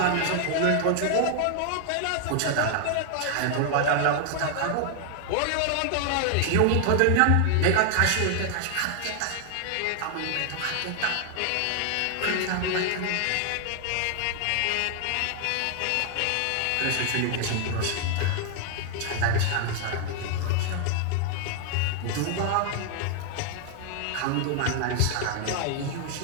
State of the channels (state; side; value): different; both; correlation 0.00